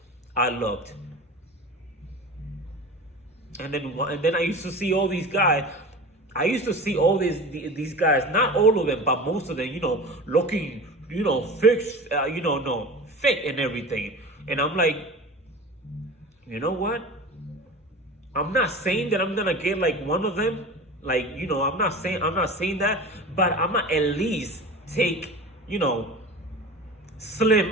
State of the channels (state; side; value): normal; both; correlation 0.34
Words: I looked. And then I used to see all these guys. I used to see all these guys, not all of them, but most of them, looking, fixed, no, fit and everything. And I'm like, you know what? I'm not saying that I'm gonna get like one of them. Like, I'm not saying that, but I'm gonna at least take,